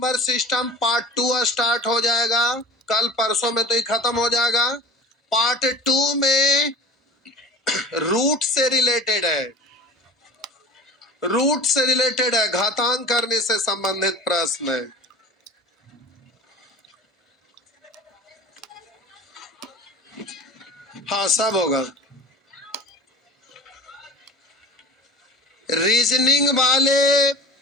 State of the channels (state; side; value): normal; both; correlation 0.38